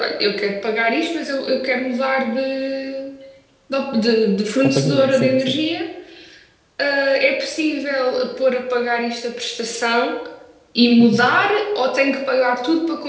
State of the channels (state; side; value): identical; both; correlation 1.00